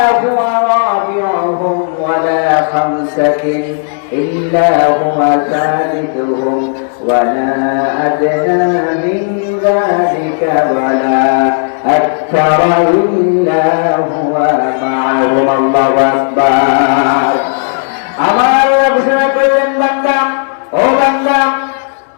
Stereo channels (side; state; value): right; silent; digital silence